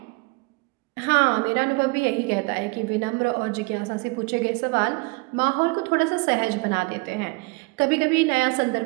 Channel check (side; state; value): left; quieter; 27.9 dB